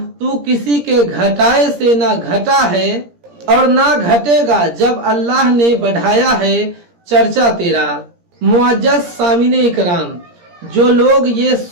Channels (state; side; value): late; left; 17 ms